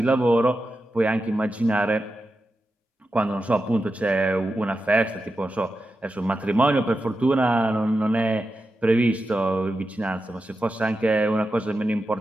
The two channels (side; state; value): both; normal; correlation 0.90